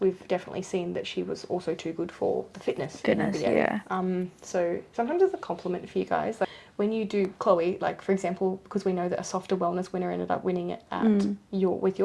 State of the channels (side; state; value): both; identical; correlation 1.00